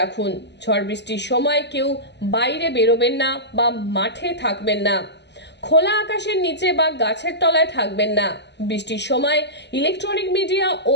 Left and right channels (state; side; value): late; right; 0.50 ms